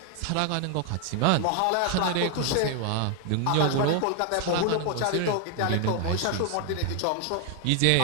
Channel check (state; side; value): different; both; correlation 0.00